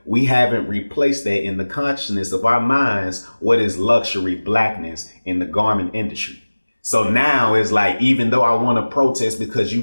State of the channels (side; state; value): both; inverted; correlation -1.00